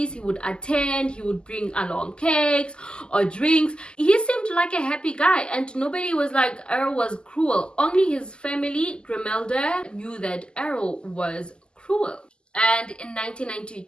he would attend. He would bring along cakes or drinks. He seemed like a happy guy, and nobody was like Errol was cruel. Only his family, Grimelda, knew that Errol was cruel. And in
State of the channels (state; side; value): late; right; 0.048 ms